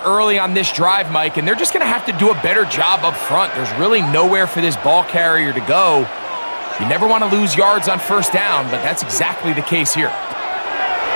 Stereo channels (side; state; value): both; inverted; correlation -1.00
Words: early on this drive, Mike, and they're just going to have to do a better job up front. There's really nowhere for this ball carrier to go. You never want to lose yards on 1st down, but that's exactly the case here.